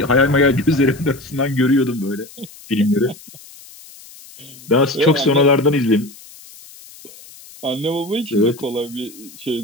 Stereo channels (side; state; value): left; noise; hiss, 20 dB below the sound